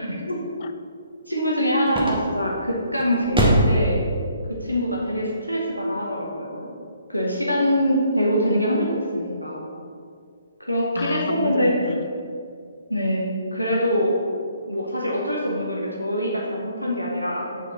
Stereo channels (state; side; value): inverted; both; correlation -0.66